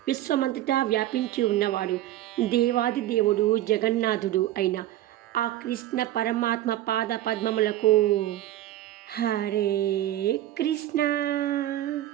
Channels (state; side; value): quieter; left; 13.9 dB